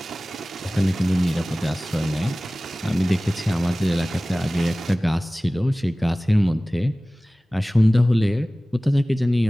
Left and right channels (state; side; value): normal; both; correlation 0.98